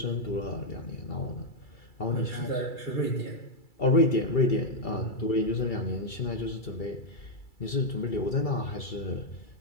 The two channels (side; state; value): right; late; 2.3 ms